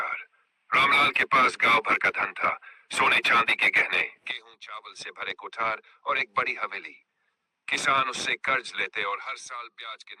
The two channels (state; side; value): identical; both; correlation 1.00